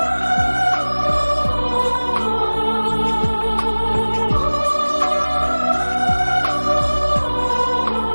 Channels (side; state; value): both; inverted; correlation -1.00